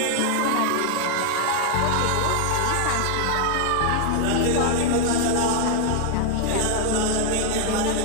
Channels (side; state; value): both; different; correlation 0.00